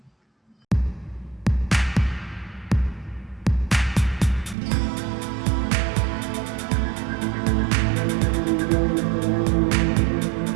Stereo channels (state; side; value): drops out; left; at 4.5 s